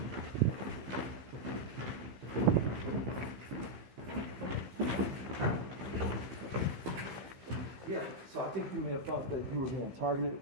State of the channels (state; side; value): late; left; 15 ms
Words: Yeah, so I think you may have thought that you were being targeted